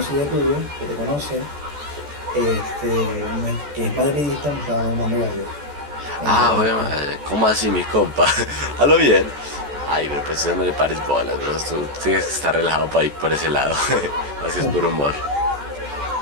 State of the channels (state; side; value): late; left; 14 ms